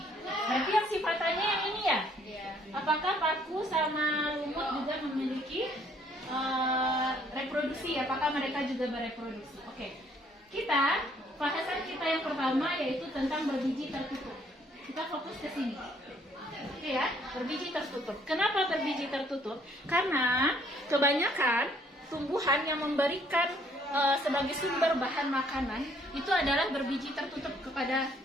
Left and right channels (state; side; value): normal; both; correlation 0.64